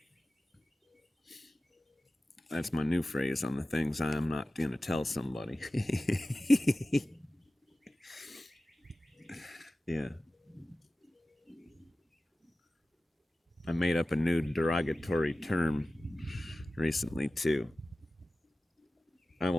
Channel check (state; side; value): normal; both; correlation 0.96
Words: That's my new phrase on the things I'm not going to tell somebody. Yeah. I made up a new derogatory term recently, too. I